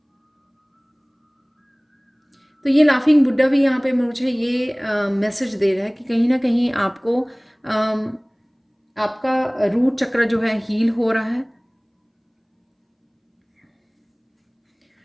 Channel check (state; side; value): identical; both; correlation 1.00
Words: तो ये लाफिंग बुड्ढा भी यहाँ पे मुझे ये मैसेज दे रहा है कि कहीं ना कहीं आपको आपका रूट चक्र जो है हील हो रहा है,